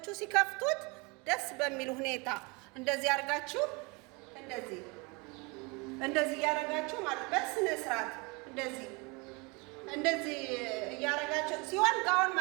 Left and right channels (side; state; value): left; quieter; 28.4 dB